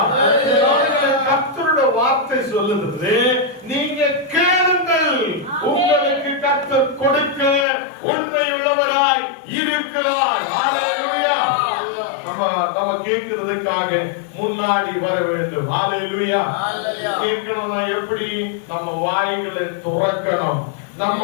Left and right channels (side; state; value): right; drops out; at 7.7 s